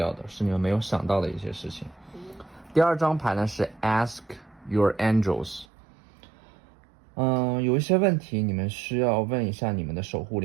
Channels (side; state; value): left; drops out; at 5.7 s